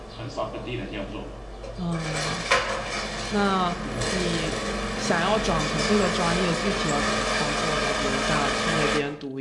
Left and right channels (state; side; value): identical; both; correlation 1.00